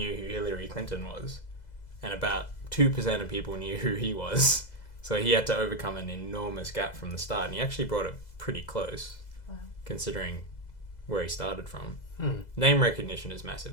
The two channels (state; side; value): late; right; 2.0 ms